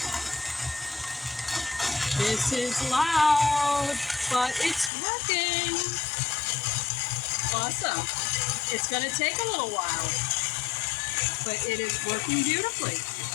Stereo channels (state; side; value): drops out; right; at 4.9 s